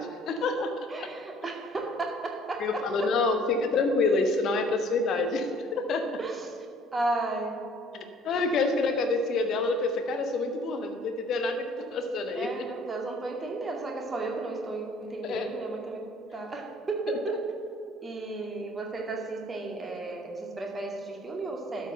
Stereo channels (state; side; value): normal; both; correlation 0.55